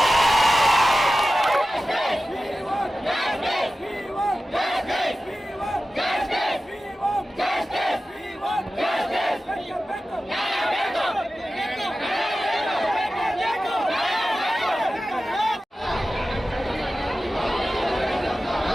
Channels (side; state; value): both; normal; correlation 0.94